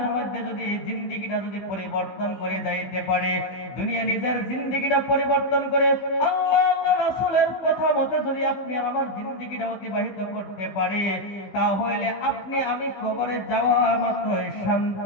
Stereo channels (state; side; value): late; right; 16 ms